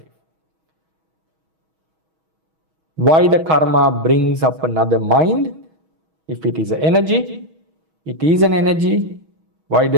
Why the karma brings up another mind? If it is an energy, it is an energy. Why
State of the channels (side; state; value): left; late; 6.3 ms